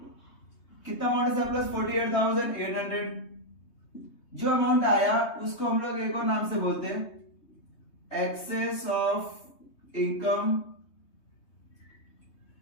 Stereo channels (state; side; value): late; right; 3.2 ms